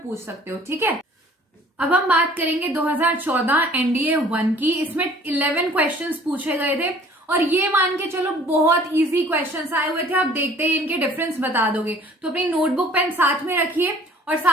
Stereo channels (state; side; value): normal; both; correlation 0.53